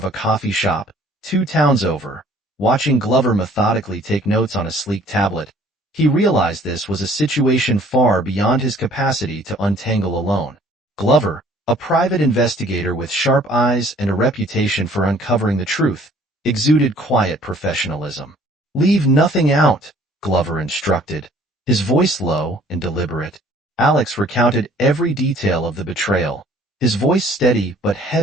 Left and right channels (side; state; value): both; normal; correlation 0.56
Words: a coffee shop, 2 towns over, watching Glover methodically take notes on a sleek tablet, he realized this was a situation far beyond his capacity to untangle alone. Glover, a private investigator with sharp eyes and a reputation for uncovering the truth, exuded quiet professionalism. "Leave nothing out," Glover instructed, his voice low and deliberate. Alex recounted every detail of the betrayal, his voice steady but